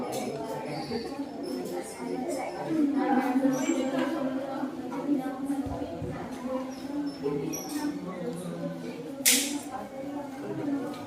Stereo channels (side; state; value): both; identical; correlation 1.00